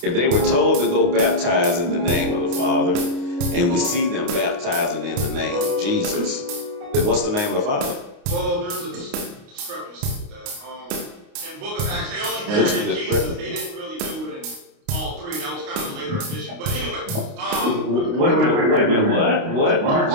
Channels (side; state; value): left; late; 29 ms